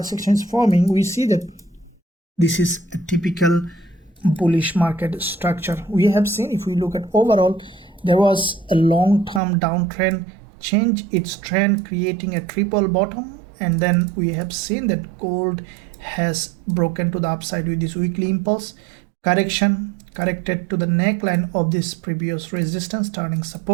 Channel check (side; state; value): left; drops out; at 9.4 s